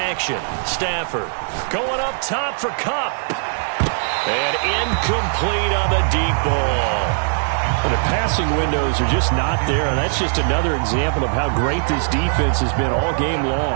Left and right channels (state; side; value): silent; left; 57 dB below the other